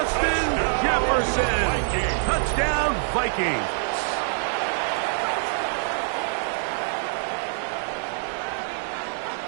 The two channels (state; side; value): silent; left; 56 dB below the other